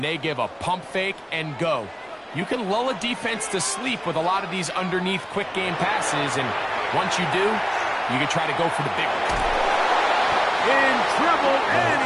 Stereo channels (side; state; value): both; identical; correlation 1.00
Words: they give a pump fake and go. You can lull a defense to sleep with a lot of these underneath quick game passes, and once you do, you can try to go for the big one. In trouble, and